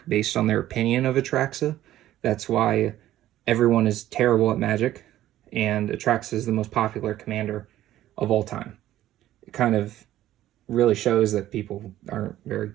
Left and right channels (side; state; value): left; quieter; 13.5 dB